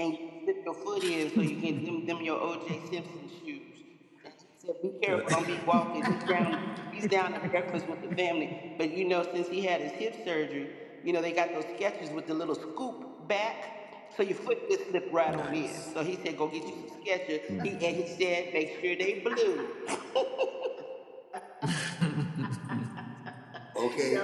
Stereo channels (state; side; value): identical; both; correlation 1.00